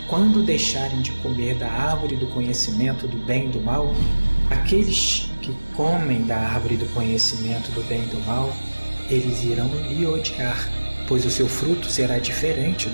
quando deixarem de comer da árvore do conhecimento do bem e do mal, aqueles que comem da árvore do conhecimento do bem e do mal, eles irão lhe odiar, pois o seu fruto será diferente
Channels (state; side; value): inverted; both; correlation -1.00